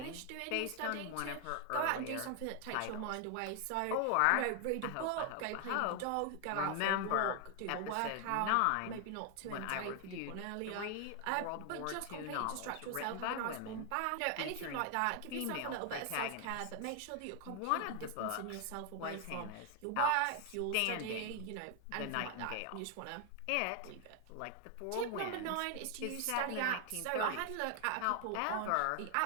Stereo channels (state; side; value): different; both; correlation 0.00